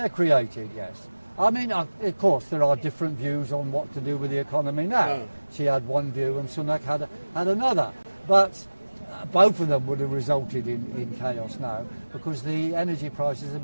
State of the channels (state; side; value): inverted; both; correlation -1.00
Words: created, yes. I mean, of course, there are different views on what to do with the economy now. She had one view and Sunak had another. But both of them would have resulted in chaos now, because the energy prices have